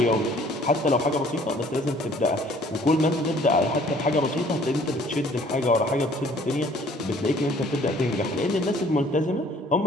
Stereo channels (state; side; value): normal; both; correlation 0.56